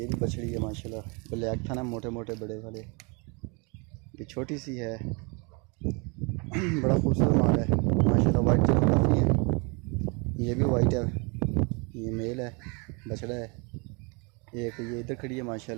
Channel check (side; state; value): left; quieter; 31.6 dB